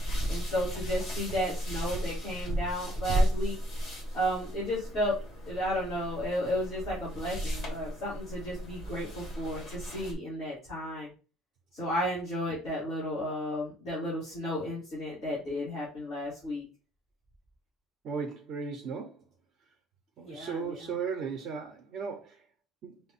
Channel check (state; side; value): normal; both; correlation 0.62